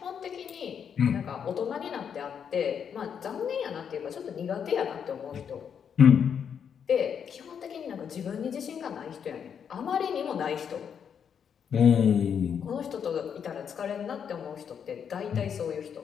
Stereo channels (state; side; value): quieter; right; 7.6 dB